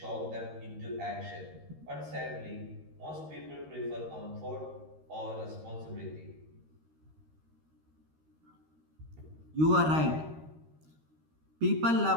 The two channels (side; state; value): left; late; 13 ms